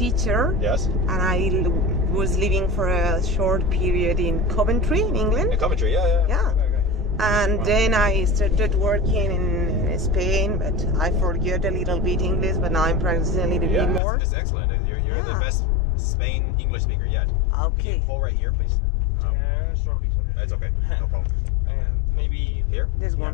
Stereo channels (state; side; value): drops out; right; at 14.0 s